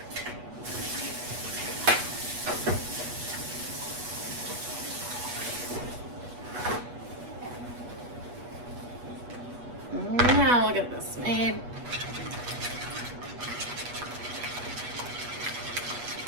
Now look at this made.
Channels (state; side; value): late; left; 8.2 ms